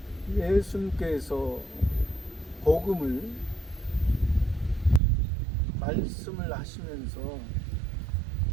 예수님께서 복음을 말씀을 하시면서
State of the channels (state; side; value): drops out; left; at 5.0 s